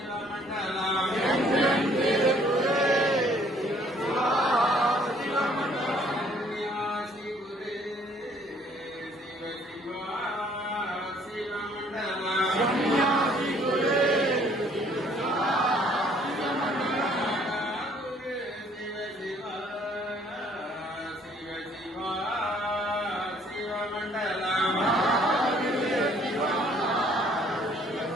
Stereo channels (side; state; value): both; normal; correlation 0.61